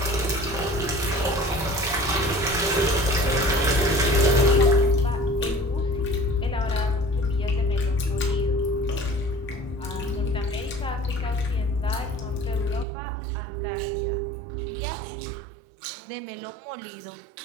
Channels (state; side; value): drops out; left; at 12.9 s